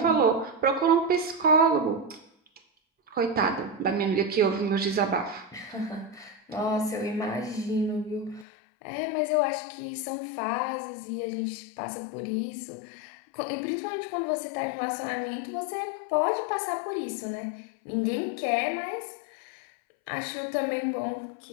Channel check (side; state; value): right; drops out; at 8.5 s